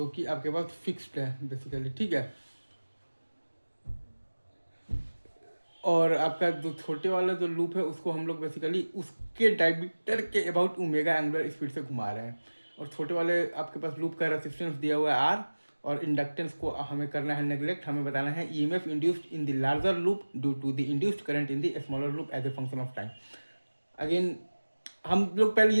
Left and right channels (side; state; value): both; inverted; correlation -1.00